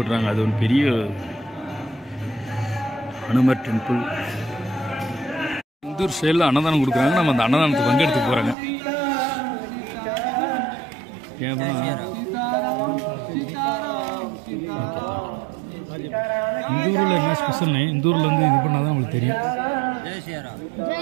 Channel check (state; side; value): drops out; left; at 8.6 s